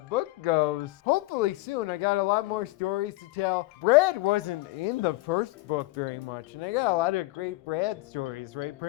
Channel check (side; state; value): right; quieter; 19.8 dB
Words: book goes, hopefully soon. I got a lot more stories to tell. Brad wasn't in the first book very much, and I got a lot of great Brad stories, right,